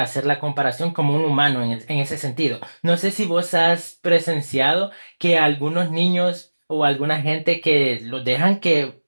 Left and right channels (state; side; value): inverted; both; correlation -1.00